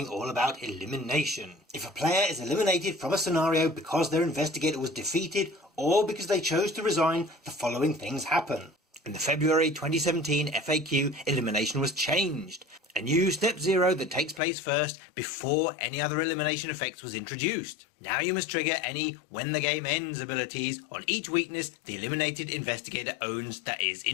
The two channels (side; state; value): right; drops out; at 14.4 s